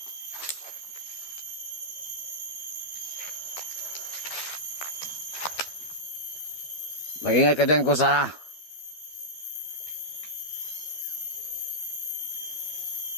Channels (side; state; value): right; late; 12 ms